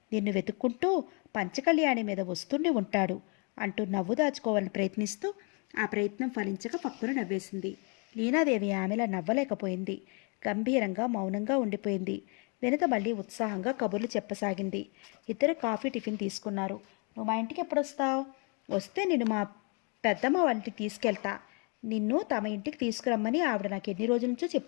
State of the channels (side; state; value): right; quieter; 34.8 dB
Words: నిన్ను వెతుక్కుంటూ పంచకళ్యాణి మీద వస్తుండి ఉంటాడు అంటూ నవ్వు దాచుకోవాలని ప్రయత్నిస్తూ ఆ ప్రయత్నం ఫలించక పక్కున నవ్వేసింది. లీనాదేవి ఆమెలా నవ్వలేకపోయింది. గంభీరంగా మౌనంగా ఉండిపోయింది. వినత మళ్ళీ ఉత్సాహంగా కబుర్లు చెప్పసాగింది. ఇద్దరు కాఫీ టిఫిన్ తీసుకున్నారు. నువ్వు మా ఇంటికి ఎప్పుడొస్తావు? వస్తే నిన్ను మా పెద్దమ్మ వాళ్ళ ఇంటికి తీసుకెళ్తా. నిన్ను తమ ఇంటికి తీసుకురమ్మని ఆవిడ నాకు ఎన్ని రోజుల నుంచో